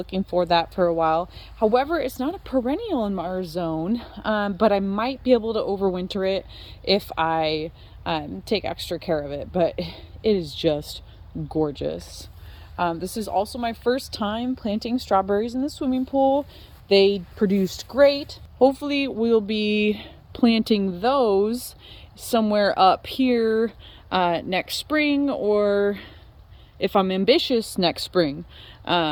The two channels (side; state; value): both; identical; correlation 1.00